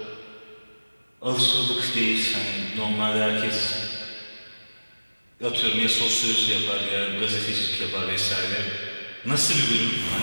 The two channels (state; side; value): inverted; both; correlation -1.00